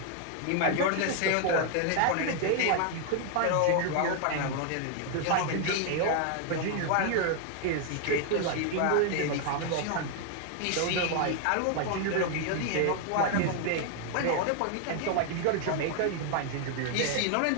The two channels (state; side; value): different; both; correlation 0.00